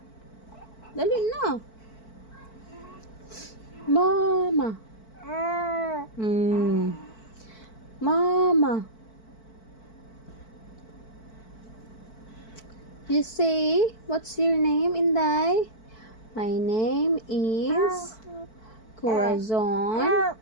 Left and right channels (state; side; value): late; right; 4.5 ms